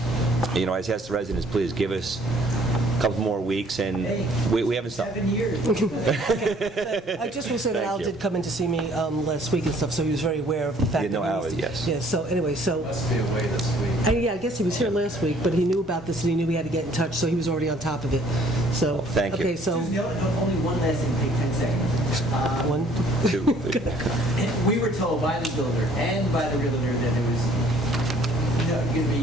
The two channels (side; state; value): both; normal; correlation 0.59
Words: ask the residents, please give us a couple more weeks, and we haven't stopped. 7 years. I just will say that Al did come in to see me last week and stuff, so he was very aware of the fact that Al, yes. Yeah, so anyway, so... Must be away this week. I guess he was here last week, but he knew about this and he knew we had to get in touch, so he was already on top of it. So, thank you. Okay, so... Only one last thing, take 10 seconds. 1, 2. We were told by the builder and by the realtor that there was going to